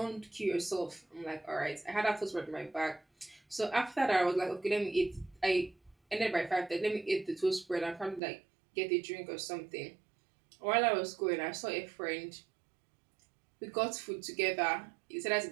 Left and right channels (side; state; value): left; drops out; at 8.2 s